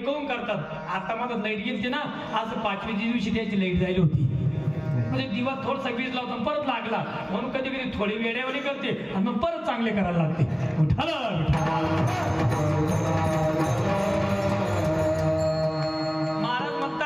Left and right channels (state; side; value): identical; both; correlation 1.00